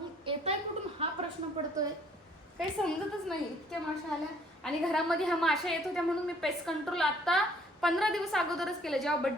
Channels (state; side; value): normal; both; correlation 0.60